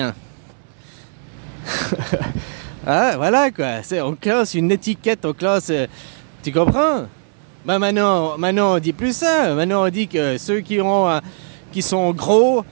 Ah, voilà, quoi. On classe une étiquette, on classe... tu comprends? Ben maintenant, on dit plus ça. Maintenant, on dit que ceux qui sont gros,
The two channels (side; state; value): left; silent; 66 dB below the other